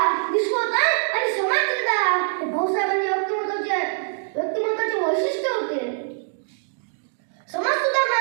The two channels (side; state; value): left; silent; digital silence